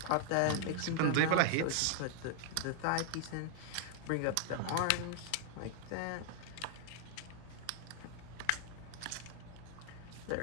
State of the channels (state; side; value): different; both; correlation 0.00